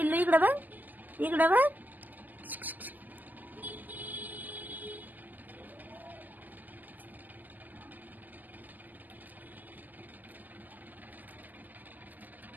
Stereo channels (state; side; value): late; left; 0.086 ms